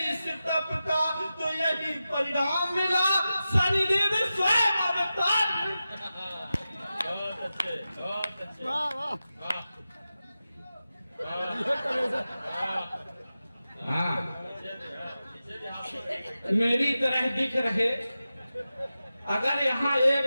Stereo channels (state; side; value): inverted; both; correlation -0.93